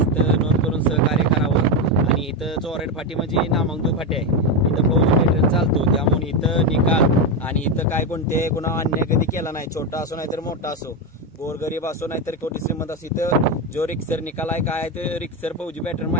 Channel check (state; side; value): normal; both; correlation 0.10